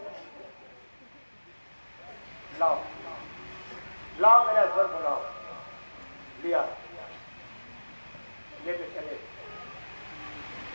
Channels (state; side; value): inverted; both; correlation -1.00